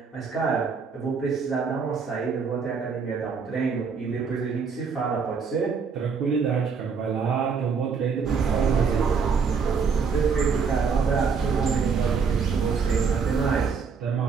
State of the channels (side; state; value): left; quieter; 5.6 dB